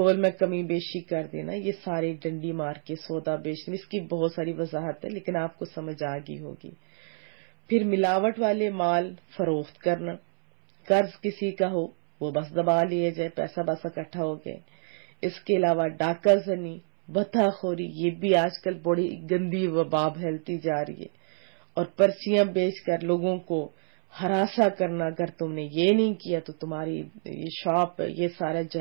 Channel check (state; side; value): silent; left; 60 dB below the other